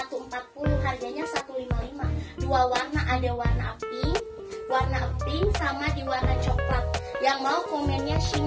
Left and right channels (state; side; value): identical; both; correlation 1.00